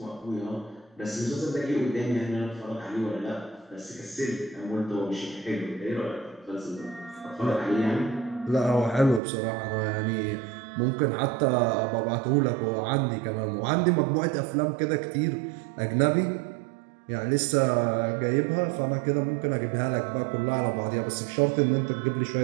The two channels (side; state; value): left; drops out; at 9.2 s